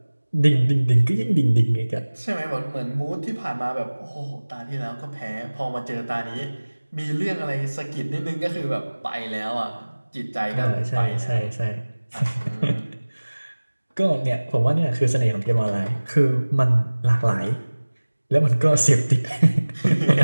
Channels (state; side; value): inverted; both; correlation -1.00